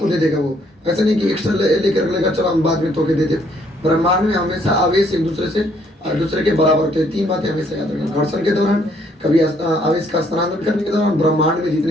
दे देगा। वो ऐसा नहीं कि एक्स्ट्रा लेकर लेगा चलो हम बाद में तोके देते। ब्रह्मांड में हमेशा आवेश एक दूसरे के बराबर होते हैं। 3 बातें हमेशा याद रखें, घर्षण के दौरान, कभी आवेश का स्थानांतरण करने के दौरान, ब्रह्मांड में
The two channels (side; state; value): both; normal; correlation 0.67